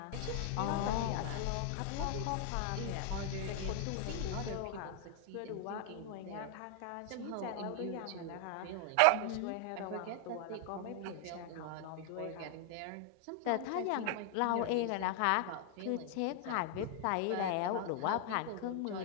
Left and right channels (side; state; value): both; different; correlation 0.00